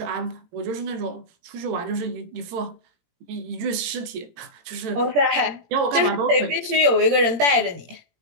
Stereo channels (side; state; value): left; late; 17 ms